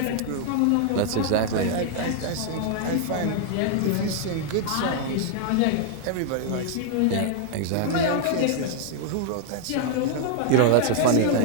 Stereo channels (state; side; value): different; both; correlation 0.00